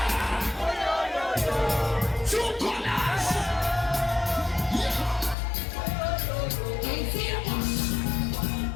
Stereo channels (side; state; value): right; drops out; at 5.4 s